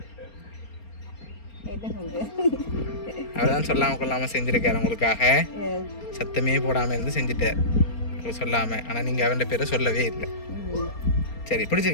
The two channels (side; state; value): right; late; 4.3 ms